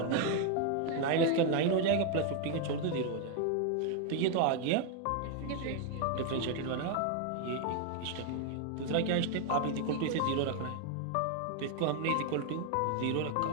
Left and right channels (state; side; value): different; both; correlation 0.01